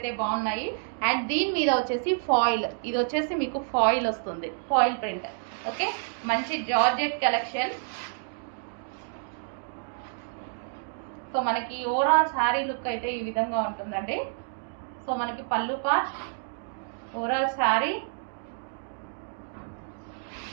బాగున్నాయి. అండ్ దీని మీద వచ్చేసి ఫాయిల్, ఇది వచ్చేసి మీకు ఫాయిల్ వస్తుంది, ఫాయిల్ ప్రింట్. ఓకే, మంచి జార్జెట్ కలెక్షన్. సో మనకి ఓవరాల్ శారీ లుక్ అయితే ఈ విధంగా ఉంటుందండి. సో మనకి పళ్ళు పార్ట్, ఓవరాల్ శారీ,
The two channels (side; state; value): left; silent; digital silence